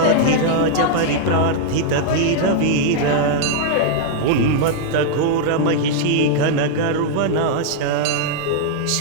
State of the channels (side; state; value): both; different; correlation -0.01